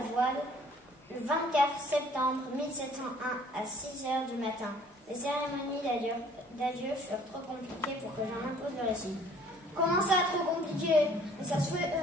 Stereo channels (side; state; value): both; normal; correlation 0.56